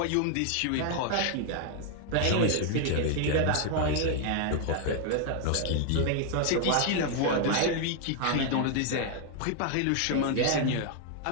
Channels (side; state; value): both; different; correlation 0.00